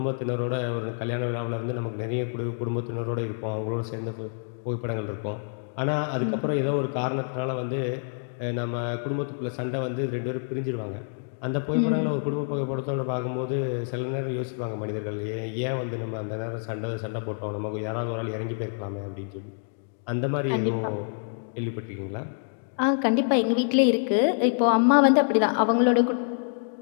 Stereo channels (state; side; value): silent; right; digital silence